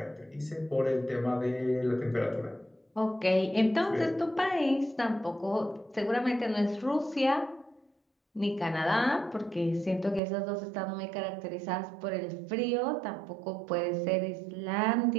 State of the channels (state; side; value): drops out; left; at 10.2 s